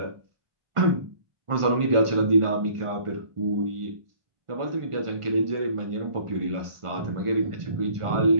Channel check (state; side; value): late; left; 1.5 ms